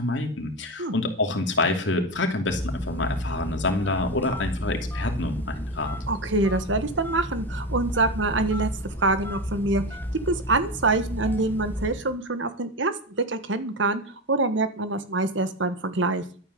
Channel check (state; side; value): normal; both; correlation 0.19